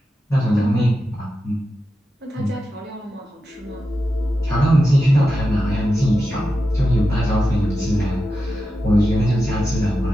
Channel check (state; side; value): normal; both; correlation 0.90